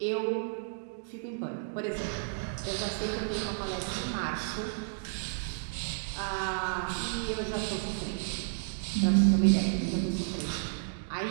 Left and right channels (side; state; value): left; silent; digital silence